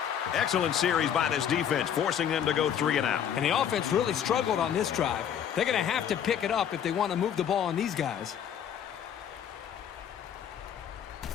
Excellent series by this defense, forcing them to go 3 and out. And the offense really struggled on this drive. They're going to have to pick it up if they want to move the ball on these guys.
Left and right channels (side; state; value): right; quieter; 9.0 dB